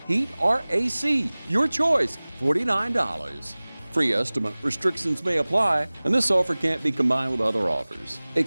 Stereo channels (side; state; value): both; inverted; correlation -1.00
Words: Heat or AC, your choice, $49. Free estimate restrictions may apply, and this offer can't be combined with other offers.